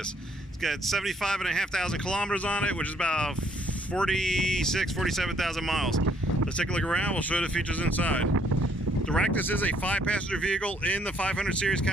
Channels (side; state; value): both; normal; correlation 0.67